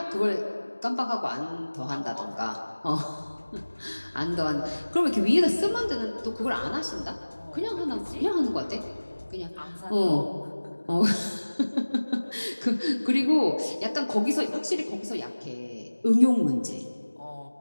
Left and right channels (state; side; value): inverted; both; correlation -1.00